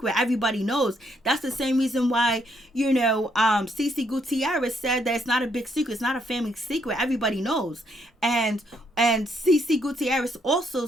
Everybody knows. That's the same reason why, you know, CeCe Gutierrez said that it's not a big secret. It's not a family secret. Everybody knows. And CeCe Gutierrez also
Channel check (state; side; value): normal; both; correlation 0.73